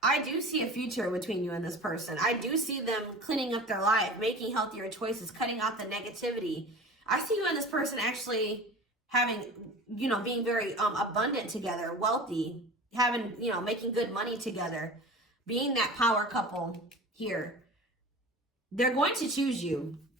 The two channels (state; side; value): normal; both; correlation 0.37